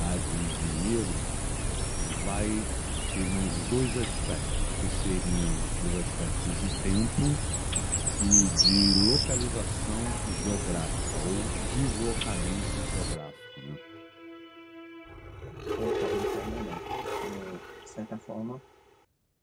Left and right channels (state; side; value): identical; both; correlation 1.00